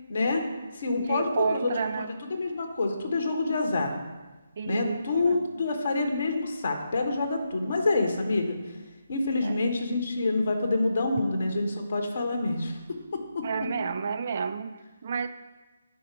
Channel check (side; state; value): both; inverted; correlation -0.83